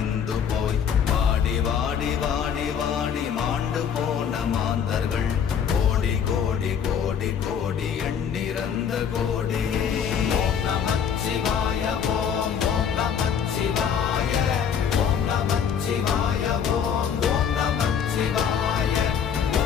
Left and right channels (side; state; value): right; quieter; 7.7 dB